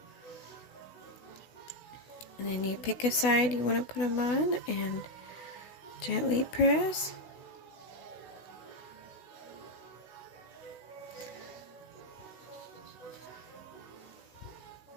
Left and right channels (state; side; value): late; right; 16 ms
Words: And then you pick a side you want to put them on and gently press.